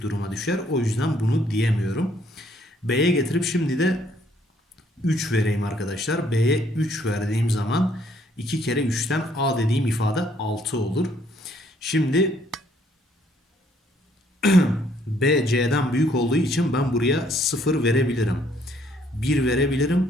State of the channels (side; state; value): both; normal; correlation 0.66